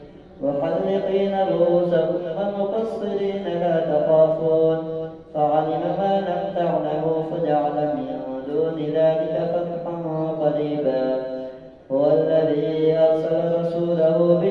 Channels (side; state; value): both; identical; correlation 1.00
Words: محلقين رؤوسكم ومقصرين لا تخافون فعلم ما لم تعلموا فجعل من دون ذلك فتحا قريبا. هو الذي أرسل رسوله